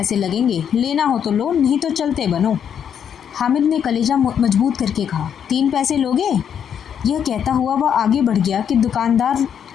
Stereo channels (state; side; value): quieter; right; 8.3 dB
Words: लगेंगे। लेना हो तो लो, नहीं तो चलते बनो। हामिद ने कलेजा मजबूत करके कहा, 3 पैसे लोगे। यह कहता हुआ वह आगे बढ़ गया कि दुकानदार